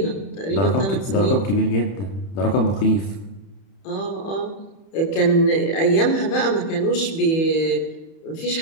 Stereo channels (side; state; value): right; late; 31 ms